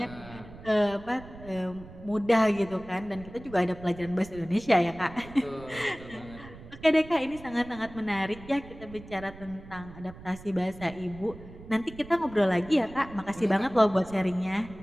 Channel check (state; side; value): noise; right; rumble, 17 dB below the sound